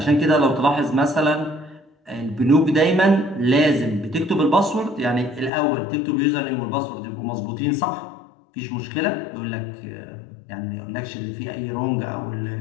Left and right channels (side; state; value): right; drops out; at 5.5 s